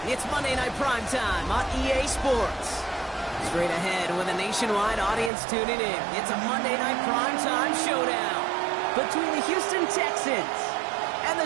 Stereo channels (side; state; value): left; drops out; at 5.3 s